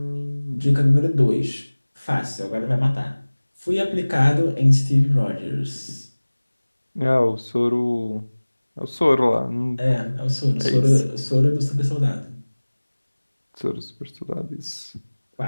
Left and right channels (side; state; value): both; inverted; correlation -1.00